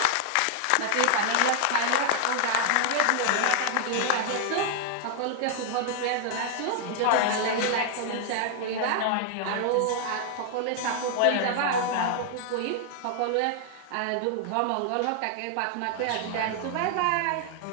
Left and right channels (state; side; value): different; both; correlation 0.00